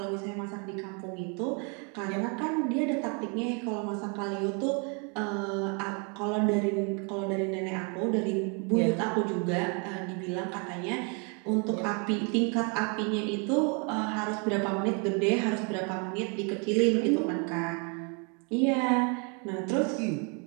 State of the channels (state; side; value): quieter; left; 36.0 dB